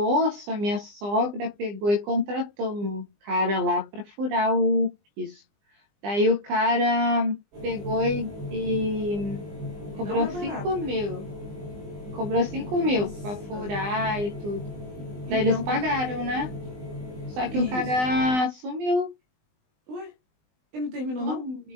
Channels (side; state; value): left; late; 20 ms